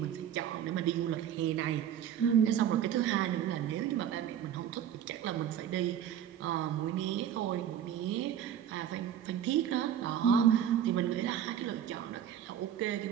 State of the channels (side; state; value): left; quieter; 9.7 dB